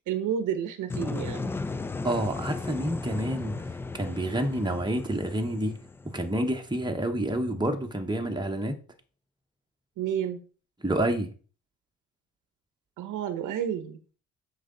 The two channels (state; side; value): normal; both; correlation 0.61